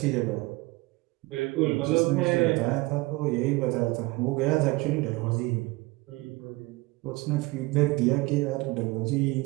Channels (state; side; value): quieter; left; 22.4 dB